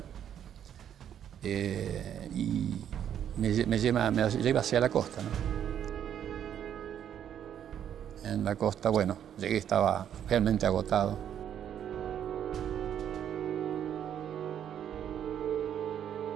y me lleva hacia la costa, ¿no? En la costa, bueno, llegué, estaba realmente agotado.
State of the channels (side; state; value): left; quieter; 9.6 dB